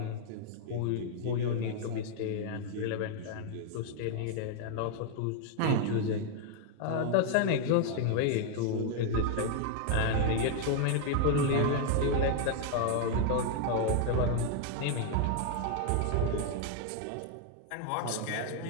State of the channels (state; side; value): different; both; correlation 0.00